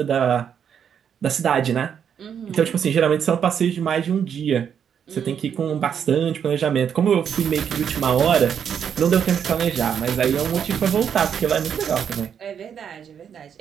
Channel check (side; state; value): left; quieter; 8.0 dB